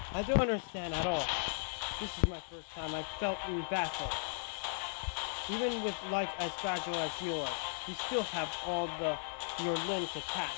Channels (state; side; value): silent; right; digital silence